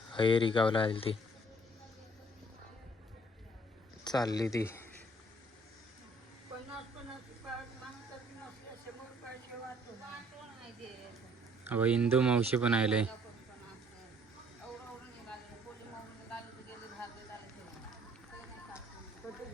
हयेरी गावला आली ती चालली ती. अहो इंदू मावशी पण आले.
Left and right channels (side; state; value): both; normal; correlation 0.60